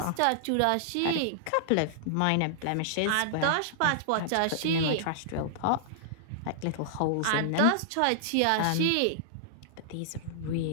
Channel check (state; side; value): different; both; correlation -0.01